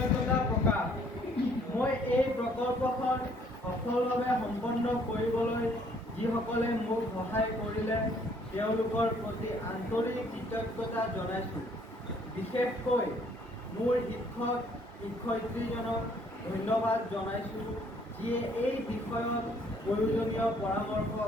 প্ৰকাশ। মই এই প্ৰকল্পখন সফলভাৱে সম্পন্ন কৰিবলৈ যিসকলে মোক সহায় কৰিলে তেওঁলোকৰ প্ৰতি আন্তৰিক কৃতজ্ঞতা জনাইছোঁ। বিশেষকৈ মোৰ শিক্ষক-শিক্ষয়িত্ৰীজনক ধন্যবাদ জনাইছোঁ, যিয়ে এই বিষয়ত প্ৰয়োজনীয় পৰামৰ্শ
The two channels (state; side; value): normal; both; correlation 0.62